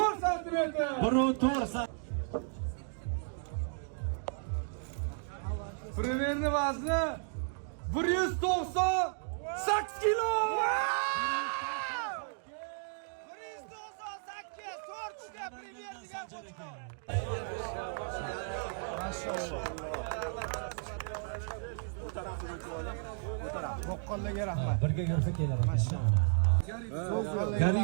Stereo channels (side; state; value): left; silent; digital silence